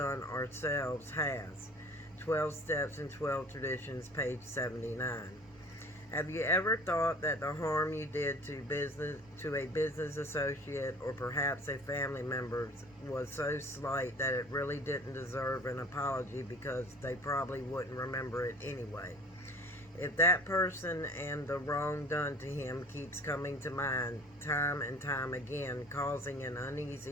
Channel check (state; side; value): normal; both; correlation 0.46